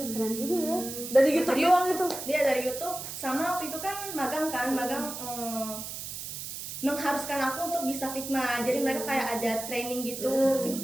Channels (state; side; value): noise; right; hiss, 8 dB below the sound